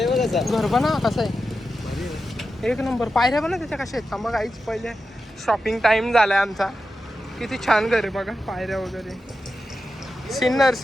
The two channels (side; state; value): both; normal; correlation 0.90